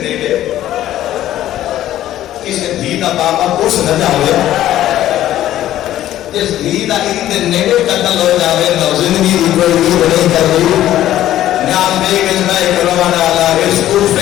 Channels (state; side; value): quieter; right; 13.1 dB